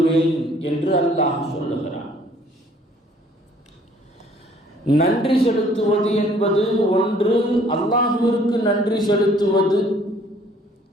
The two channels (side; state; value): both; normal; correlation 0.59